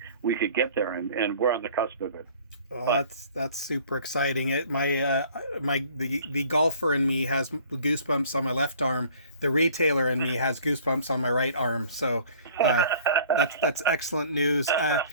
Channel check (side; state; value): both; inverted; correlation -0.51